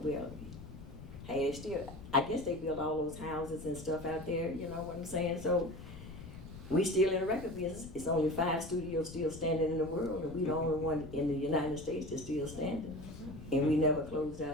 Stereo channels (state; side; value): noise; left; rumble, 14 dB below the sound